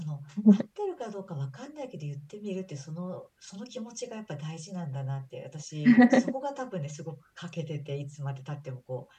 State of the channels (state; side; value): identical; both; correlation 1.00